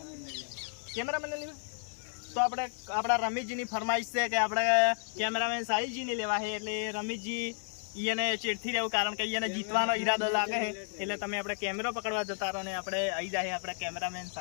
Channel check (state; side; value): silent; right; digital silence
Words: કેમેરામેન લેવા તો આપણે આપણા રમેશજીની ફરમાઈશ છે કે આપણે કેમેરામેન સાહિલજીને લેવા છે. એટલે રમેશજી એને ચેડથી રહેવું કારણ કે એને જીતવાનો ઈરાદો લાગે છે. એટલે તમે આપણે કેમેરો પકડવા જતા રહો ને આપણે આવી જાય આપણા કેમેરામેન